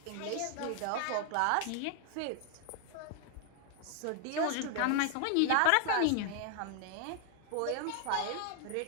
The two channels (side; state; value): both; different; correlation 0.00